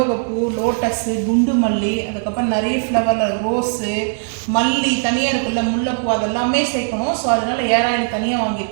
லோட்டஸு, குண்டு மல்லி, அதுக்கப்புறம் நிறைய ஃப்ளவரில் ரோஸு, மல்லி தனியாக இருக்குல்ல, முல்லைப்பூ, அதெல்லாமே சேர்க்கணும். ஸோ அதனால ஏர் ஆயில் தனியாக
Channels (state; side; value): silent; left; digital silence